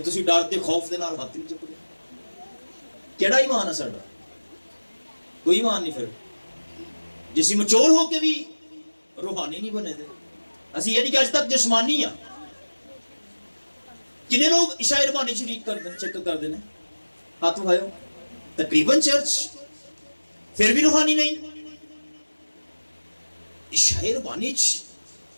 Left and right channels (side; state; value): both; inverted; correlation -1.00